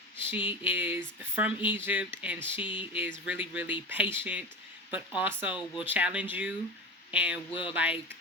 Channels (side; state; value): both; normal; correlation 0.26